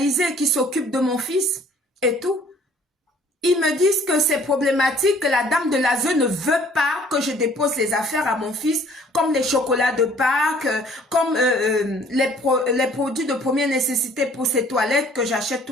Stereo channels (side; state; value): both; normal; correlation 0.56